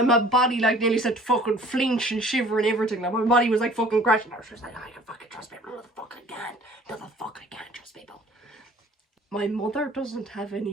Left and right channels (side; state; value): both; normal; correlation 0.51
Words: body like nearly said to fucking flinch and shiver and everything. Like, my body was like fucking crashing. I was just like, I can fucking trust people. No, the fuck I can't. No, the fuck I can't trust people. My mother doesn't have